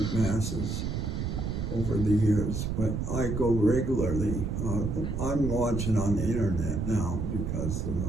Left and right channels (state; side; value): noise; right; rumble, 2 dB below the sound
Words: Masses over the years, but I go regularly. I'm watching on the internet now because of